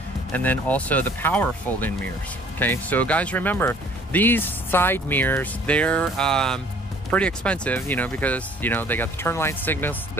and then also the power fold-in mirrors. Okay, so guys, remember, these side mirrors, they're pretty expensive, you know, because, you know, they got the turn light signals,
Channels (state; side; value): normal; both; correlation 0.55